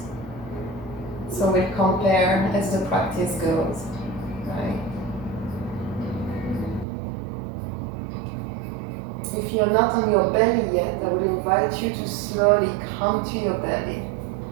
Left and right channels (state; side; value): drops out; left; at 6.9 s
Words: So we'll compare as the practice goes, right? If you're not on your belly yet, I would invite you to slowly come to your belly